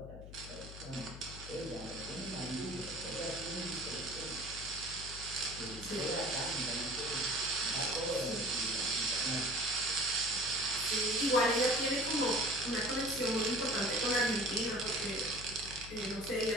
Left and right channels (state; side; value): noise; left; hum, 13 dB below the sound